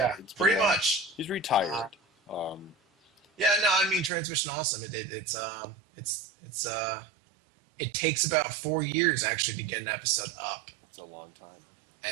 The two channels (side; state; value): left; drops out; at 4.1 s